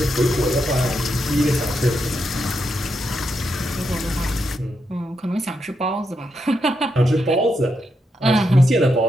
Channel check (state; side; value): normal; both; correlation 0.82